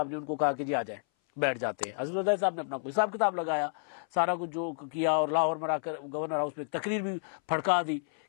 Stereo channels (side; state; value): right; silent; 57 dB below the other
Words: نے ان کو کہا کہ جی آ جائیں، بیٹھ جاتے ہیں۔ آصف زرداری صاحب نے اپنا کوئی حساب کتاب لگایا، سارا کچھ جو کیا، اور لاہور میں آ کر گورنر ہاؤس میں ایک تقریر بھی پھڑکا دی